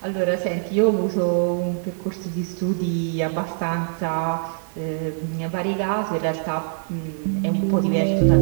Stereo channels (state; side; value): silent; left; digital silence